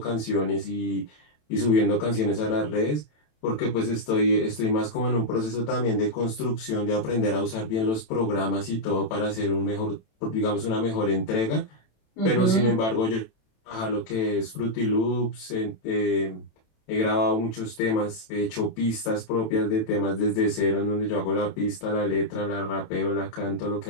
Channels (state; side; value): late; right; 27 ms